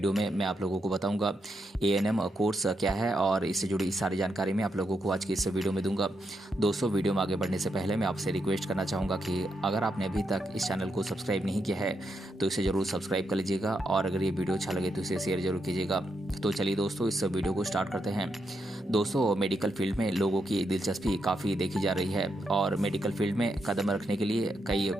में मैं आप लोगों को बताऊंगा एएनएम कोर्स क्या है और इससे जुड़ी सारी जानकारी मैं आप लोगों को आज के इस वीडियो में दूंगा। दोस्तों, वीडियो में आगे बढ़ने से पहले मैं आपसे रिक्वेस्ट करना चाहूँगा कि अगर आपने अभी तक इस चैनल को सब्सक्राइब नहीं किया है तो इसे ज़रूर सब्सक्राइब कर लीजिएगा और अगर ये वीडियो अच्छा लगे तो इसे शेयर जरूर कीजिएगा। तो चलिए दोस्तों, इस वीडियो को स्टार्ट करते हैं। दोस्तों, मेडिकल फील्ड में लोगों की दिलचस्पी काफ़ी देखी जा रही है और मेडिकल फील्ड में कदम रखने के लिए कई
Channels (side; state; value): both; normal; correlation 0.82